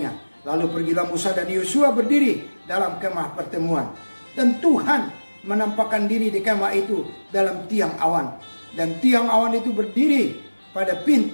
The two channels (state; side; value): inverted; both; correlation -1.00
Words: Lalu pergilah Musa dan Yosua berdiri dalam kemah pertemuan. Dan Tuhan menampakkan diri di kemah itu dalam tiang awan. Dan tiang awan itu berdiri pada